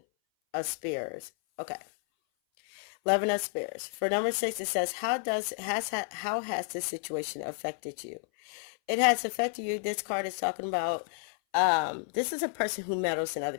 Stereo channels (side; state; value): right; silent; 57 dB below the other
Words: of spears. Okay. 11 of spears. For number 6, it says, how has this situation affected you? It has affected you. This card is talking about, this is a person who meddles in